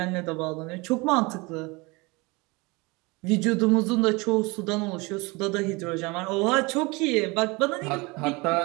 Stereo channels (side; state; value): left; quieter; 25.5 dB